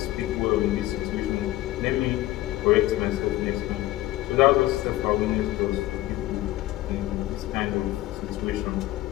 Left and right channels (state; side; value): quieter; right; 16.4 dB